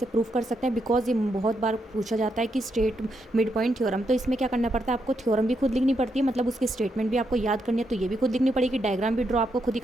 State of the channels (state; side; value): normal; both; correlation 0.80